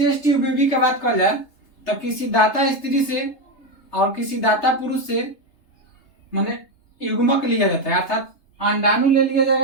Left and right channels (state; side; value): late; right; 3.3 ms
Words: ट्यूब बेबी की बात कर जाए तो किसी दाता स्त्री से और किसी दाता पुरुष से माने युग्मक लिया जाता है, अर्थात अंडाणु ले लिया